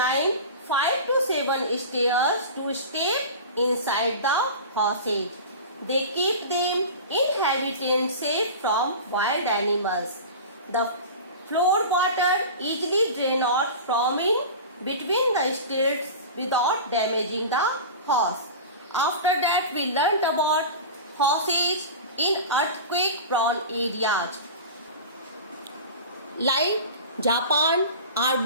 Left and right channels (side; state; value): both; inverted; correlation -0.32